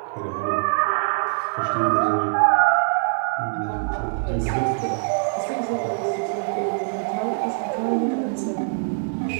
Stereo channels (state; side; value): silent; left; digital silence